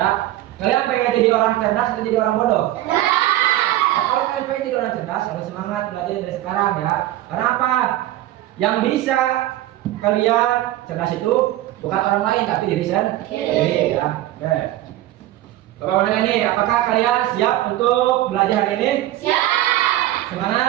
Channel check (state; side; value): quieter; left; 14.8 dB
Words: Kalian pengen jadi orang cerdas atau jadi orang bodoh? Nah, kalau kalian pengen jadi orang cerdas, harus semangat belajar dari sekarang ya. Karena apa? Yang bisa kalian cerdas itu bukan orang lain tapi diri sendiri ya. Oke. Bapak mau nanya nih, apakah kalian siap untuk belajar hari ini? Siap.